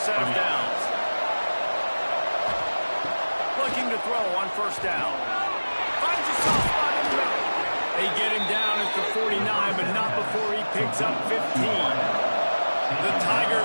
of downs. Looking to throw on first down. Finds a soft spot in the middle. They get him down at the 49, but not before he picks up 15. The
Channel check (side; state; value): both; inverted; correlation -1.00